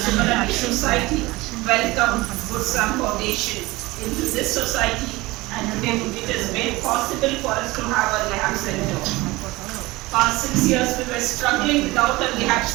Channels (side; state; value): left; quieter; 20.8 dB